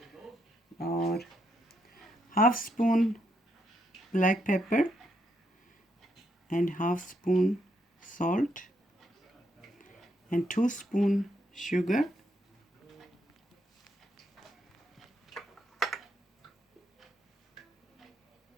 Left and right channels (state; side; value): normal; both; correlation 0.77